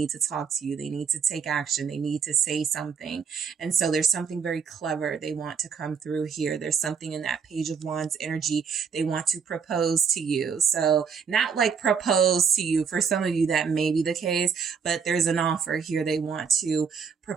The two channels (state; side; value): quieter; left; 6.3 dB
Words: to talk to you. They need to take action. They need to say something. And so there's something very clever they want to come through here. There's something in that Page of Wands energy. They want to propose to you. So not like propose to you. For some of you, that may be the case, but there's an offer here. They want to